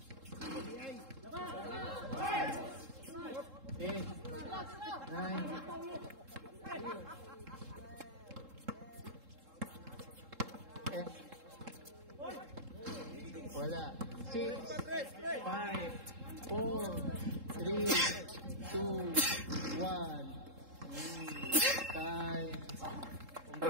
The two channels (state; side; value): late; left; 3.7 ms